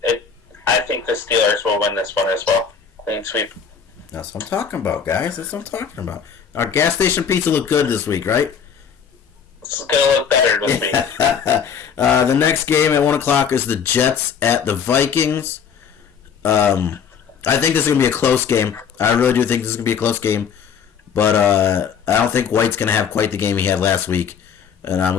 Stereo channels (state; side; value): quieter; right; 7.1 dB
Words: think the Steelers will win this one as well. Clean sweep. That's what I'm talking about, guys. That's what I'm talking about. Our gas station pizza looked good this week, right? It's going to look better this week. The next game at 1 o'clock is the Jets at the Vikings. I think this is going to be a close game. I really do think this is going to be a close game. But I don't think White's going to have quite the game he had last week. and I'm